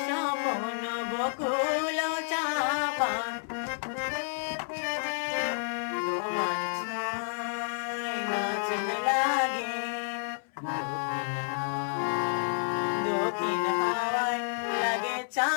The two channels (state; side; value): silent; right; 58 dB below the other